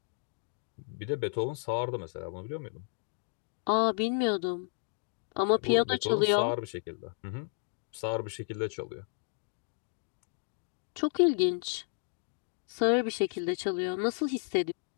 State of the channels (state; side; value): silent; right; 56 dB below the other